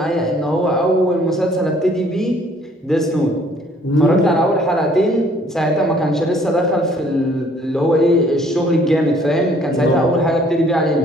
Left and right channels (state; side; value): normal; both; correlation 0.60